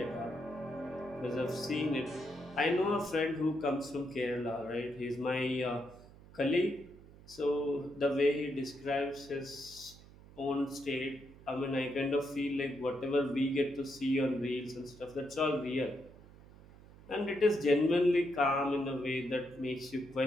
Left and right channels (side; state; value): right; noise; hum, 21 dB below the sound